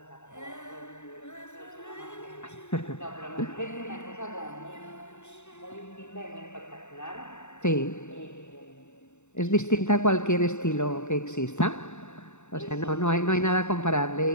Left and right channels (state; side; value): late; right; 0.83 ms